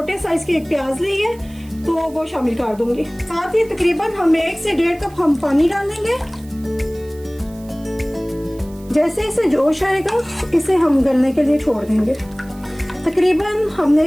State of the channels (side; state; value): right; noise; hiss, 25 dB below the sound